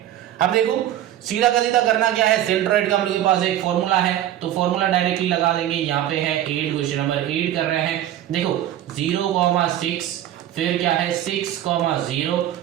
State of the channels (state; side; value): quieter; left; 12.2 dB